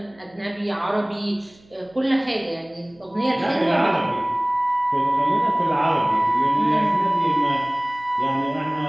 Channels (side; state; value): right; noise; hum, 29 dB below the sound